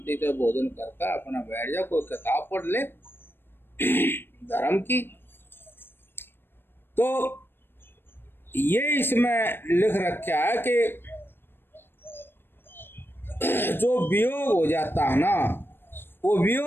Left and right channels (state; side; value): late; right; 0.10 ms